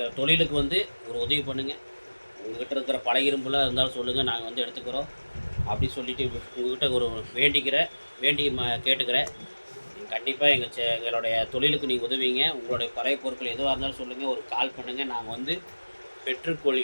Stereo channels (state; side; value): inverted; both; correlation -1.00